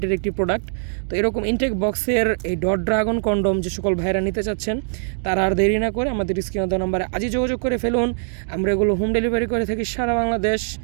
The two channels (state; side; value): silent; left; digital silence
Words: একটি প্রোডাক্ট। তো এরকম ইনটেক বক্সের এই ডট ড্রাগন কন্ডম যে সকল ভাইরা নিতে চাচ্ছেন তারা আর দেরি না করে আমাদের স্ক্রিনে দেওয়া নাম্বারে আজই যোগাযোগ করে ফেলুন। আমরা এগুলো হোম ডেলিভারি করে থাকি সারা বাংলাদেশ।